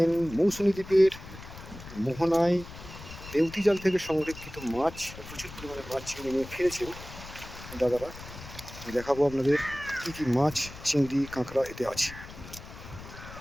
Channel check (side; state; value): left; noise; rumble, 14 dB below the sound